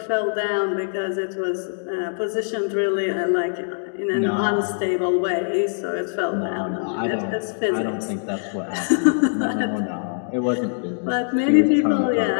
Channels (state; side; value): silent; right; digital silence